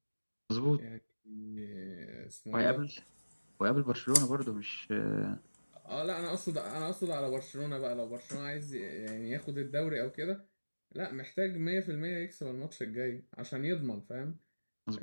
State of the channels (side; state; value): both; inverted; correlation -1.00